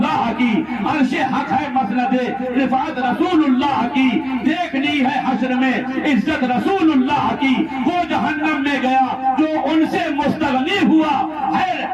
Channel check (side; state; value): both; identical; correlation 1.00